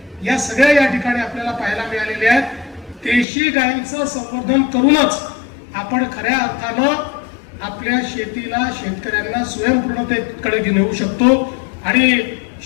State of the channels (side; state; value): right; drops out; at 3.2 s